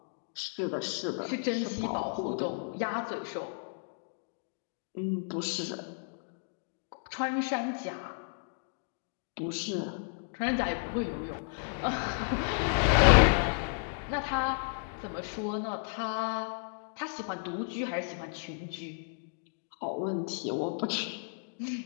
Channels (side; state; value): right; silent; digital silence